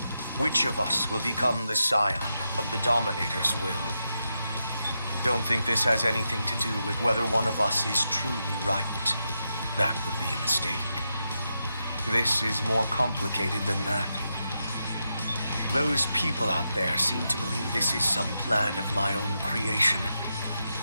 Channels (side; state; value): both; inverted; correlation -0.86